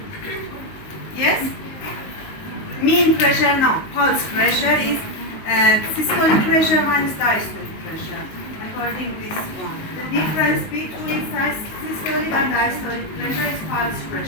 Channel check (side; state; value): right; late; 19 ms